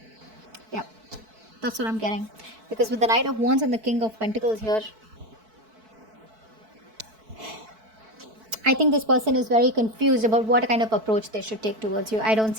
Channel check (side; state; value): left; late; 4.6 ms